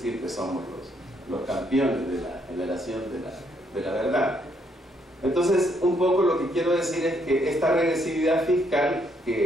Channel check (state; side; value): normal; both; correlation 0.72